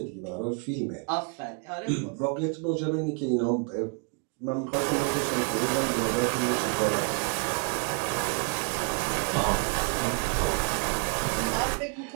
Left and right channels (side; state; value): left; quieter; 38.3 dB